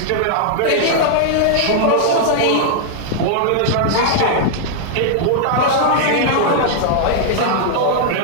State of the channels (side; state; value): both; different; correlation -0.01